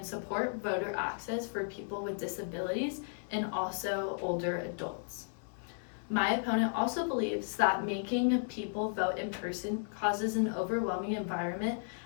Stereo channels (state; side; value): silent; right; digital silence